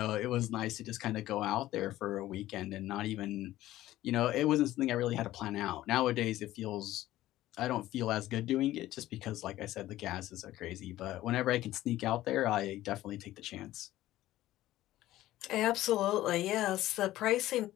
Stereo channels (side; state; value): right; quieter; 15.1 dB